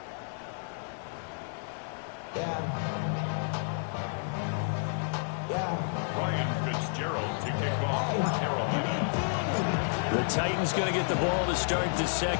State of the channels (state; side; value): silent; right; 57 dB below the other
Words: Ryan Fitzgerald to kick off for Carolina. The Titans going to get the ball to start the